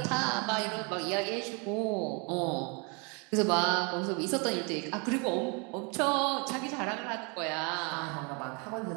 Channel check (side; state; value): left; quieter; 32.9 dB